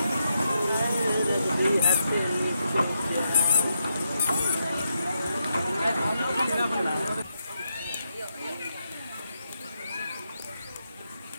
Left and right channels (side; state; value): both; inverted; correlation -0.82